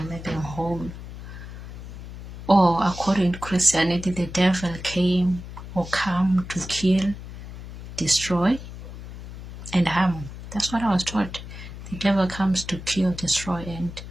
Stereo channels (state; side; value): noise; left; hum, 12 dB below the sound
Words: make them whole? Or according to Christianity, the devil came or come to kill, destroy, and harm. That's what I was taught. The devil comes to kill, destroy, and